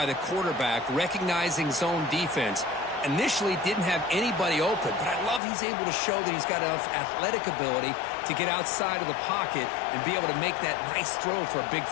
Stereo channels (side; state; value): right; drops out; at 5.4 s